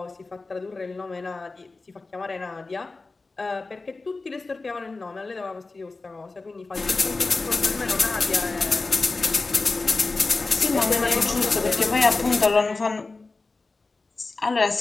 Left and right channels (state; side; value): quieter; right; 3.6 dB